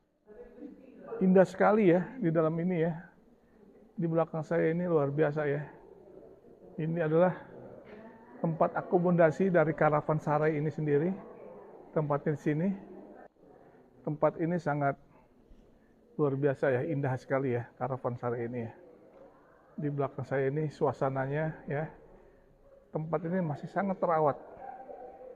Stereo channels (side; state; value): both; identical; correlation 1.00